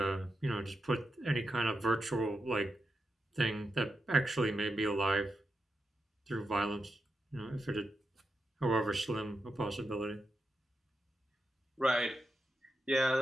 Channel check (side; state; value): both; normal; correlation 0.87